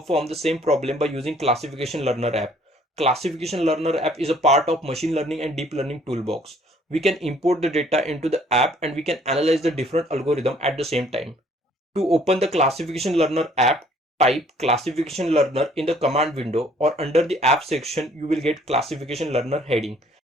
the same problem by using Classification Learner app. Classification Learner app is a part of machine learning and deep learning toolbox. We can import the data into the app and we can analyze the different algorithm at the same time. To open the Classification Learner app, type Classification Learner in the command window, or under the app section you will get Classification Learner heading.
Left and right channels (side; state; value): both; normal; correlation 0.60